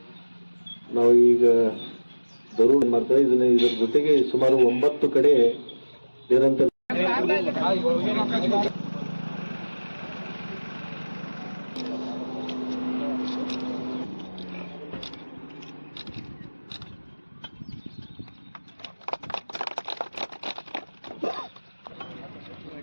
ನಾವು ಈಗ ದರೂರು ಮಾಡ್ತಾರೆ, ಇದರ ಜೊತೆಗೆ ಸುಮಾರು 9 ಕಡೆ ನಿರಂತರ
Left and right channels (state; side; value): inverted; both; correlation -1.00